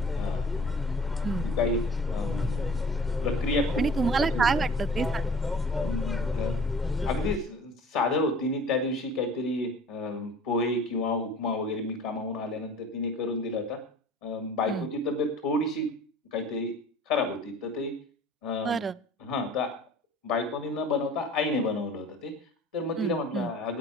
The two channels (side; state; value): both; normal; correlation 0.46